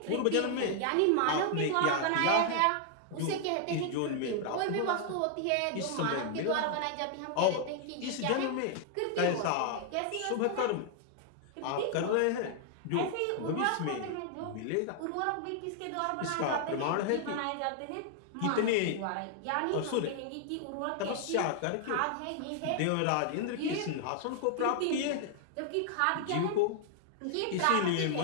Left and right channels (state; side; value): different; both; correlation 0.00